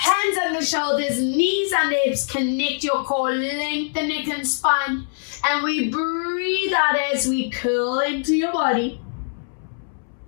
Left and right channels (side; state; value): right; silent; 64 dB below the other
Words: on the shoulders, knees on the hips, connect your core, lengthen the neck and spine. And we breathe out as we curl into your body.